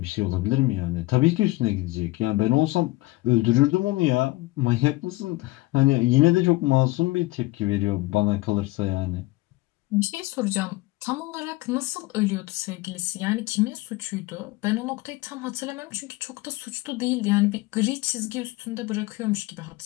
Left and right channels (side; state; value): right; quieter; 20.6 dB